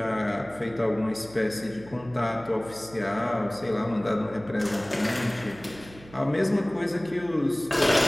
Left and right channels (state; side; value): noise; right; hum, 20 dB below the sound